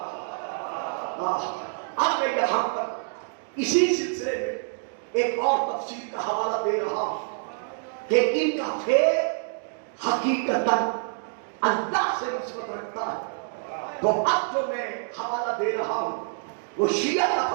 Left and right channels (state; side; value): silent; left; digital silence